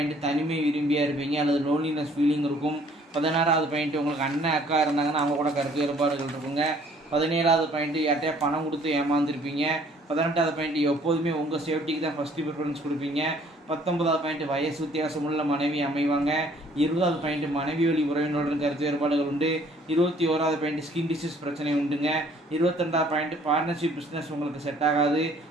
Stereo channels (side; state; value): both; normal; correlation 0.59